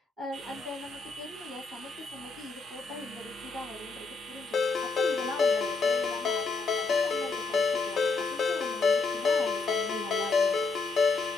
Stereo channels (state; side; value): quieter; right; 4.1 dB